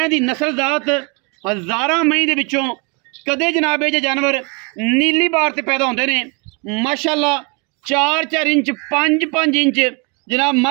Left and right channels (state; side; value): quieter; left; 32.2 dB